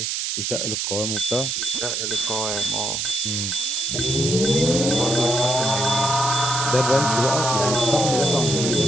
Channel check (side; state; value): right; noise; hiss, 1 dB below the sound